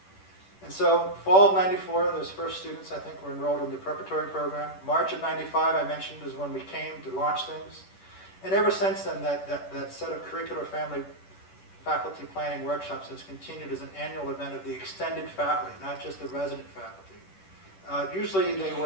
And so fall of 94, those first students, I think, were enrolled in the preparatory program. March of 95, I mentioned, is when we came to launch things. And ever since then, that set of curricular family faculty planning workshops has continued as an annual event of the extended faculty, not just the resident faculty. Usually they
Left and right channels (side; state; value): right; late; 10 ms